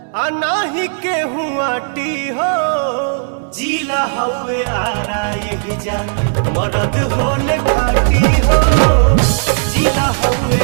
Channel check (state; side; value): silent; left; digital silence